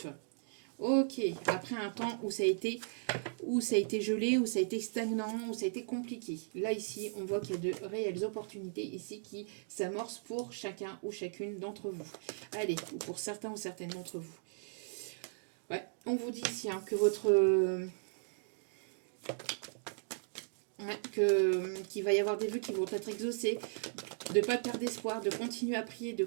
Ok, après un temps où ça a été gelé, où ça a été stagnant, où ça a été compliqué. Là, ici, on voit qu'il y a de réelles opportunités ici qui s'amorcent pour chacun ou chacune d'entre vous. Allez, ou pour certains ou certaines d'entre vous. Ouais, on vous dit ici que votre... qu'il va y avoir des vœux qui vont être exaucés, de ne pas perdre d'espoir, de continuer à prier, de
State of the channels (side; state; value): left; silent; digital silence